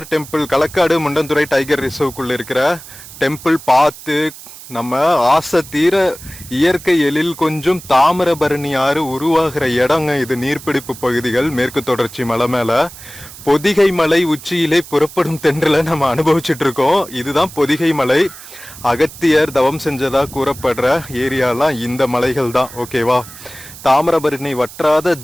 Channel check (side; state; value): right; noise; hiss, 16 dB below the sound